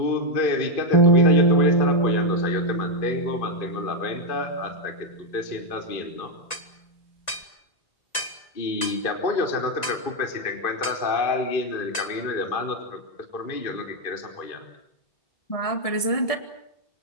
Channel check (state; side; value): late; right; 1.9 ms